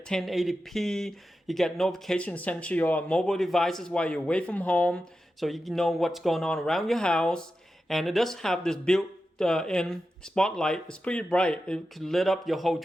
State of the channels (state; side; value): normal; both; correlation 0.91